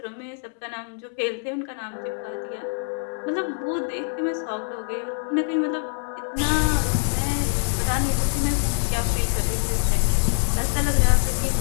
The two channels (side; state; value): right; silent; 62 dB below the other